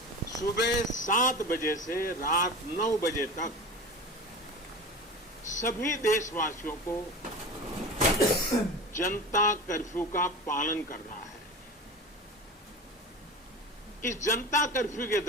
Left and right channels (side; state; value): both; normal; correlation 0.31